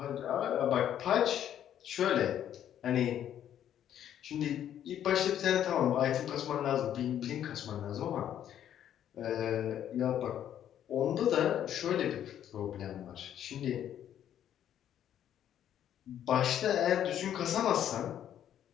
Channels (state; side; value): quieter; right; 10.4 dB